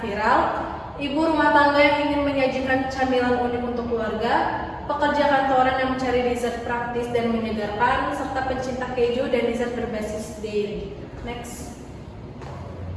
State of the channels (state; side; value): identical; both; correlation 1.00